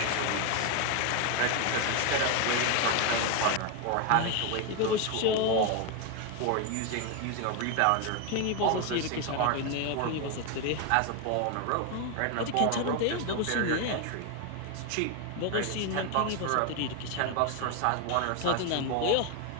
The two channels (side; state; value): both; different; correlation 0.01